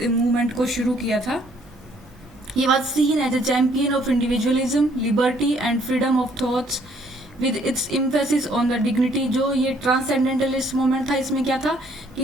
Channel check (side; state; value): both; normal; correlation 0.64